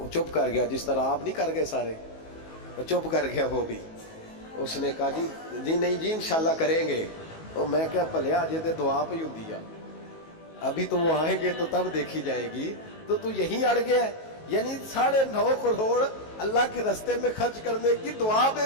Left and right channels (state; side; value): late; right; 19 ms